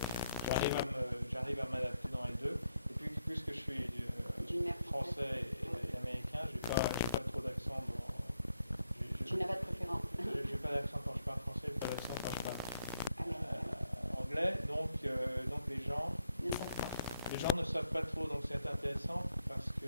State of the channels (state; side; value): inverted; both; correlation -0.78